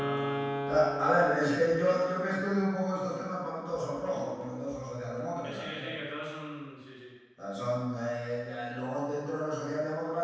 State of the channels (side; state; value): both; identical; correlation 1.00